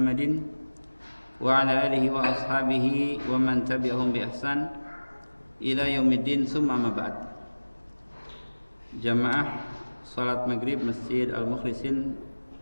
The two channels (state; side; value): inverted; both; correlation -1.00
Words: wa ala alihi wa ashabihi wa man tabi'ahum bi ihsan ila yaumiddin, summa amma ba'd. Jamaah salat maghrib Masjid Al-Mukhlisin